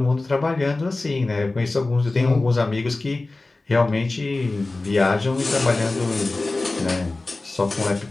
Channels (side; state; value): right; quieter; 3.2 dB